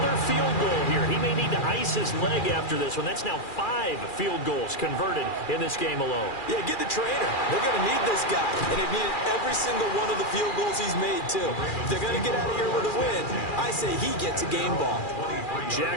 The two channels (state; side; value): late; right; 2.4 ms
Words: field goal here. He may need to ice his leg after this one. That's now 5 field goals converted in this game alone. Yeah, get the trainer. They're going to need this guy. And they've needed every single one of the field goals he's made, too. If they're going to get out of here with a win, I say he gets a game ball.